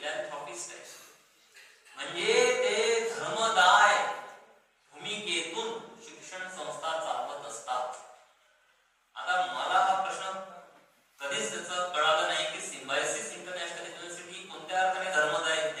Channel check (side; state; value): both; identical; correlation 1.00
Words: आहेत, म्हणजे ते धर्मदाय भूमिकेतून शिक्षण संस्था चालवत असतात. आता मला हा प्रश्न कधीच त्याचं कळालं नाही की सिम्बायोसिस इंटरनॅशनल युनिव्हर्सिटी कोणत्या अर्थाने धर्मदाय